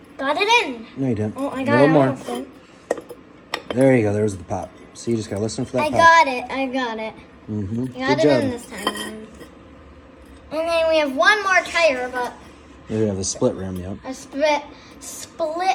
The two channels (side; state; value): both; identical; correlation 1.00